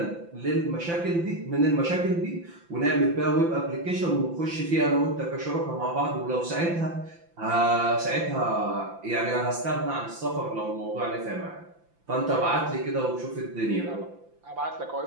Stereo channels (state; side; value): late; left; 5.9 ms